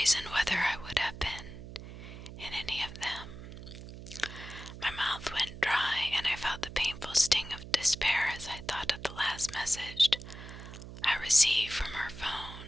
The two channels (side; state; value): right; noise; hum, 13 dB below the sound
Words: whether I would have been in any of them. My mouth went dry, and I felt the painful sting of despair as I thought of the last message I received from her